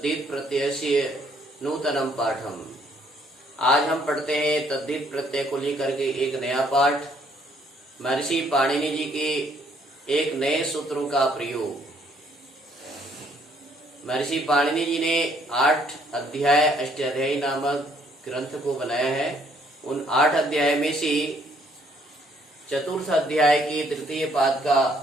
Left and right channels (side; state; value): both; normal; correlation 0.66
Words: प्रत्ययस्य नूतनं पाठम्। आज हम पढ़ते हैं तद्धित प्रत्यय को लेकर के एक नया पाठ। महर्षि पाणिनि जी के एक नए सूत्रों का प्रयोग। महर्षि पाणिनि जी ने 8 अध्याय अष्टाध्यायी नामक ग्रंथ को बनाया है। उन 8 अध्याय में से चतुर्थ अध्याय की तृतीय पाद का